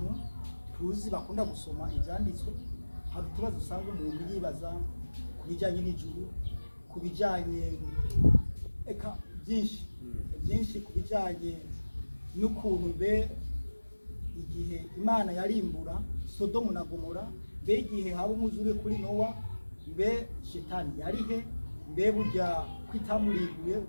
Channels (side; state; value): both; inverted; correlation -1.00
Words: tuzi bakunda gusoma ibyanditswe. Hari utubazo usanga umuntu yibaza ku bijyanye n'ijuru, ku bijyanye byinshi ku bijyanye n'ukuntu mbe igihe Imana yarimbura Sodomu na Gomora, mbe igihe haba umwuzure kuri Nowa, mbe Shetani yarihe, mbe burya kwitamurinduye.